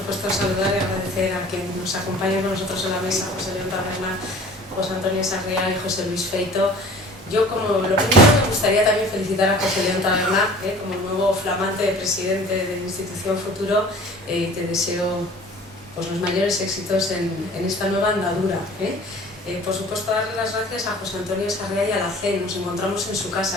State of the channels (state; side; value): normal; both; correlation 0.46